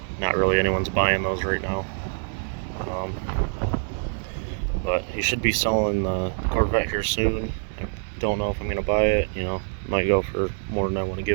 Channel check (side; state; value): left; silent; digital silence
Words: Not really anyone's buying those right now. But he should be selling the Corvette here soon. I don't know if I'm going to buy it, you know, might go for more than I want to